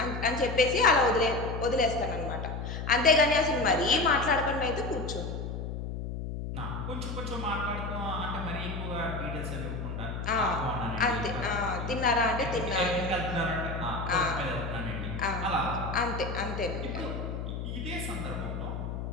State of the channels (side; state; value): left; noise; hum, 5 dB below the sound